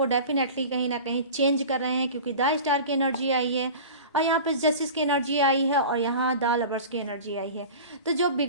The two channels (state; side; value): inverted; both; correlation -0.36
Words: डेफिनेटली कहीं ना कहीं चेंज कर रहे हैं, क्योंकि द स्टार की एनर्जी आई है और यहाँ पर जस्टिस की एनर्जी आई है और यहाँ द लवर्स की एनर्जी आई है। तो जो